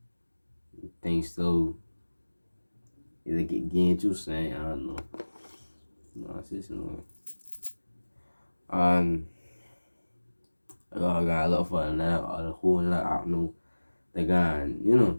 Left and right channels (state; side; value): inverted; both; correlation -1.00